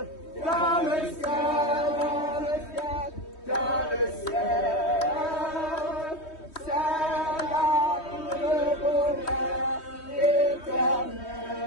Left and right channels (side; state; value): right; late; 3.2 ms